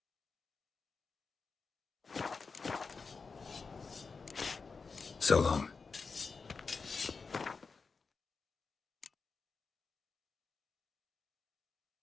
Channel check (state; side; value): quieter; right; 4.8 dB